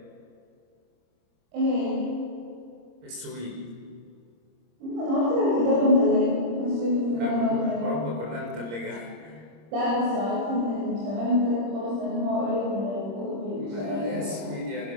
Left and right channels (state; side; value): late; left; 26 ms